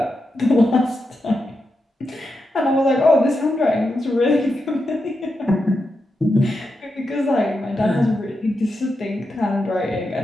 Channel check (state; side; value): normal; both; correlation 0.87